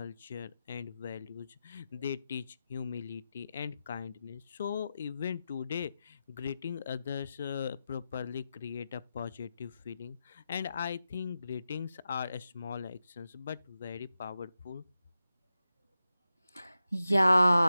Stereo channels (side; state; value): both; inverted; correlation -0.92